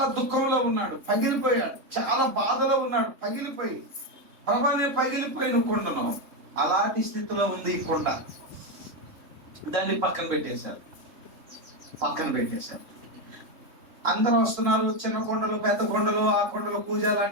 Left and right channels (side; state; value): left; late; 3.4 ms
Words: దుఃఖంలో ఉన్నాడు, పగిలిపోయాడు. చాలా బాధలో ఉన్నాడు, పగిలిపోయి ప్రభా నేను పగిలిపోయిన కొండను. అలాంటి స్థితిలో ఉంది ఈ కొండ. దాన్ని పక్కన పెట్టేశారు. అందరూ వస్తున్నారు. చిన్న కొండలు, పెద్ద కొండలు, ఆ కొండలు, పూజ